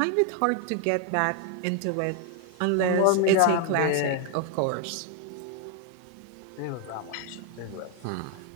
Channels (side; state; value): both; different; correlation 0.01